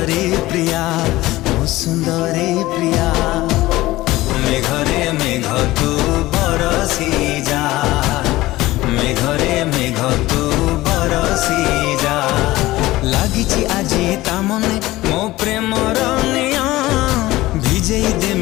प्रिया, मो सुंदरी प्रिया। मेघरे मेघ तू बरसी जा, मेघरे मेघ तू बरसी जा। लागिची आजी ता मने मो प्रेमर निया, भिजेई दे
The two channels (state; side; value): quieter; right; 17.9 dB